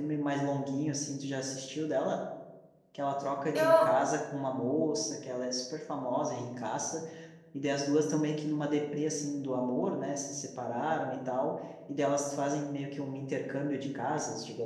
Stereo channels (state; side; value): identical; both; correlation 1.00